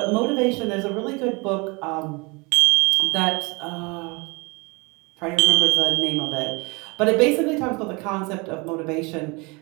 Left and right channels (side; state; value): left; quieter; 27.9 dB